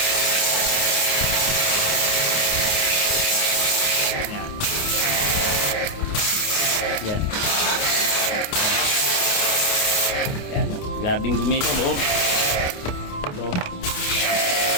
Yan. Yan. Grabing dumi ito loob. Ito.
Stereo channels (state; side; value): late; right; 28 ms